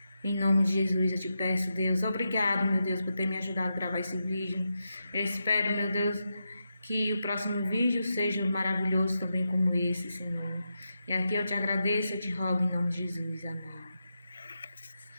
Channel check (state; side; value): inverted; both; correlation -0.87